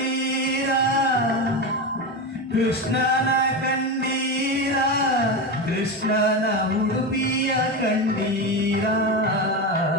ಕೃಷ್ಣನ ಕಂಡೀರ ಕೃಷ್ಣನ ಉಡುಪಿಯ ಕಂಡೀರ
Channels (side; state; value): both; normal; correlation 0.18